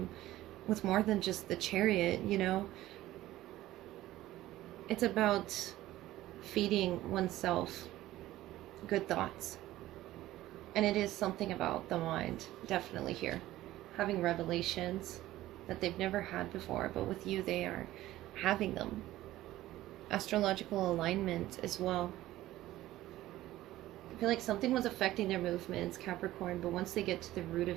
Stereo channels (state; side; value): quieter; left; 15.5 dB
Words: with more than just the Chariot, you know. It's about feeding oneself good thoughts. And it is something about the mind, definitely here. Having revelations that they've never had before, but with you they are having them. Astrological alignment as well. I feel like something was affecting their movements, Capricorn, but once they get to the root